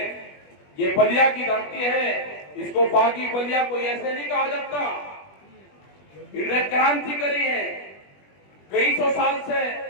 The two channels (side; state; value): right; late; 20 ms